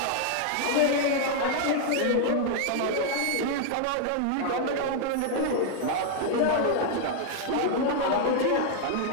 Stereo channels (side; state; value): both; different; correlation 0.00